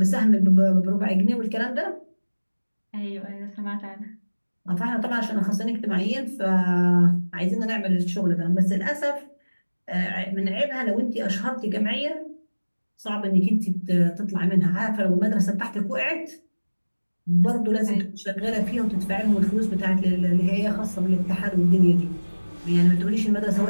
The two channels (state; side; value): inverted; both; correlation -1.00